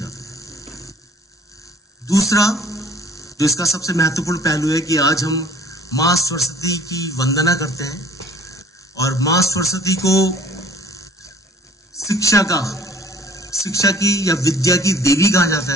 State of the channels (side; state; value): both; normal; correlation 0.50